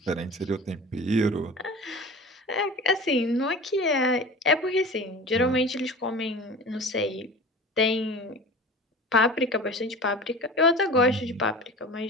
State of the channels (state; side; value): normal; both; correlation 0.36